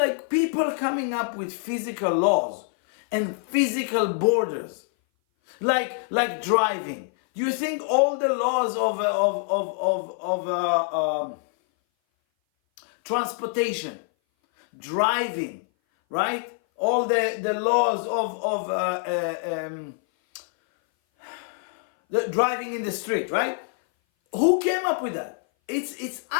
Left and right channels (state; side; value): silent; right; 58 dB below the other